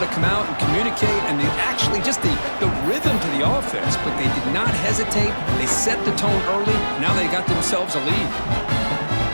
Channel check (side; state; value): both; inverted; correlation -1.00